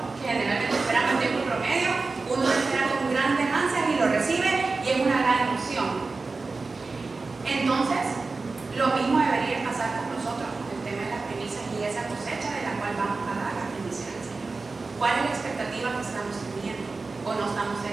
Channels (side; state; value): left; quieter; 3.9 dB